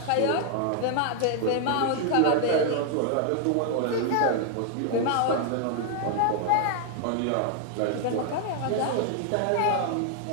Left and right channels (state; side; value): different; both; correlation 0.00